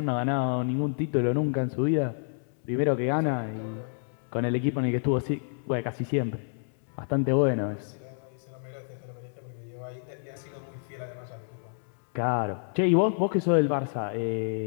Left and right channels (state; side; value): silent; right; 59 dB below the other